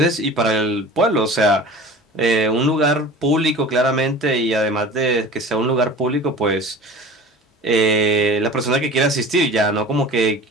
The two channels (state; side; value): normal; both; correlation 0.39